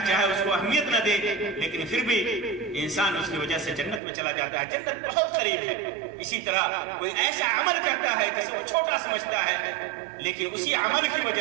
اس کو اہمیت نہ دے، لیکن پھر بھی انسان اس کی وجہ سے جنت میں چلا جاتا ہے۔ جنت بہت قریب ہے۔ اسی طرح کوئی ایسا عمل کرتا ہے جسے وہ چھوٹا سمجھتا ہے، لیکن اسی عمل کی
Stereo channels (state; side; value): drops out; left; at 4.0 s